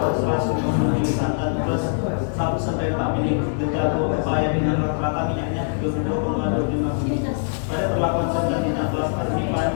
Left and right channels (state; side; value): silent; right; 57 dB below the other